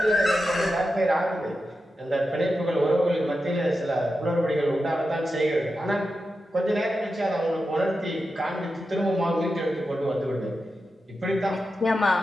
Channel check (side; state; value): both; normal; correlation 0.90